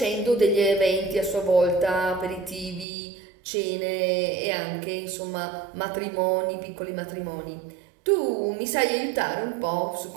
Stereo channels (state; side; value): drops out; left; at 2.9 s